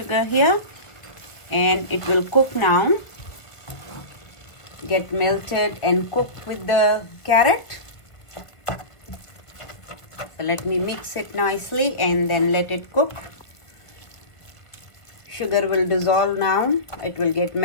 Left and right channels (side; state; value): right; late; 1.7 ms